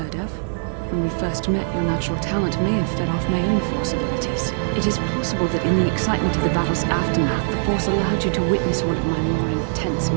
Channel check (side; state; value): left; silent; digital silence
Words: of. When we first met, your natural talent may have fed off my own Force abilities. It is possible that in the excitement of the battle's aftermath, the Force allowed you to witness one of my more intense